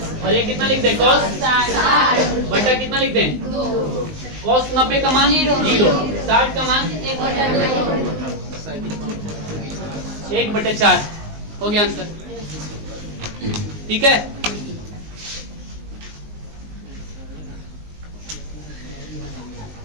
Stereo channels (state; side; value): late; left; 19 ms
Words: और ये कितना लिख दे cos 60 बटा कितना लिख दे, cos 90 का मान 0, 60 का मान 1/4 हो गया आंसर, ठीक है।